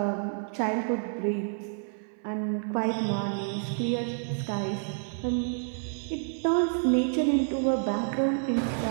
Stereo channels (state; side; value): silent; left; 58 dB below the other